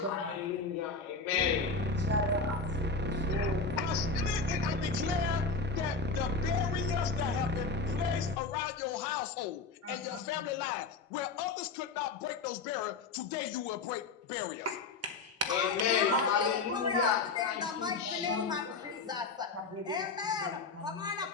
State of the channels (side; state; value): right; quieter; 4.3 dB